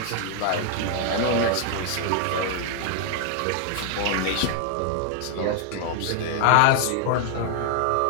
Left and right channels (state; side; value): different; both; correlation 0.00